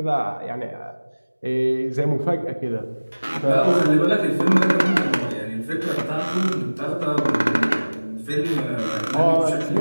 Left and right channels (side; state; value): both; inverted; correlation -1.00